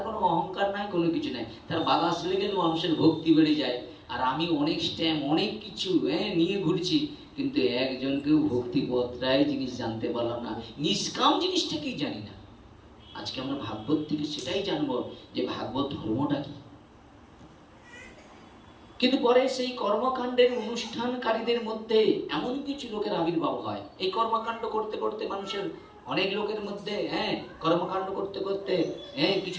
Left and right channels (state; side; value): identical; both; correlation 1.00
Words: কোনো অহংকার নাই, কোনো কিছু নাই, তার বাতাস লেগে মানুষের ভক্তি বেড়ে যায়। আর আমি অনেক স্ট্যাম্প, অনেক কিছু নিয়ে ঘুরছি, কিন্তু একজনকেও ভক্তি পত্রায় জিনিস জানতে পারলাম না, নিষ্কাম জিনিসটা কি জানি না। আজকে আমরা ভাগবত থেকে সেটাই জানবো যে ভাগবত ধর্মটা কি। কিন্তু পরে সেই কর্মকাণ্ডের অনুষ্ঠানকারীদের মধ্যে এমন কিছু লোকের আবির্ভাব হয়। এই কর্মকাণ্ড করতে করতে মানুষের অনেক লোকের মধ্যে কর্মকাণ্ড করতে করতে